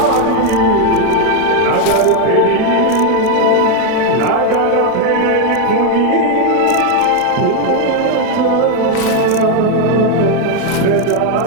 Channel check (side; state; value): both; different; correlation 0.01